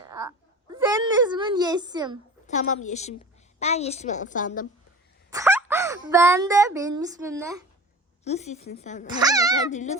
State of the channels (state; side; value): normal; both; correlation 0.37